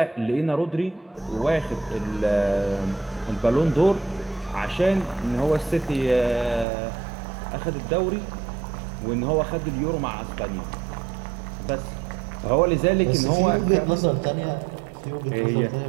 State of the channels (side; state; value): left; drops out; at 6.7 s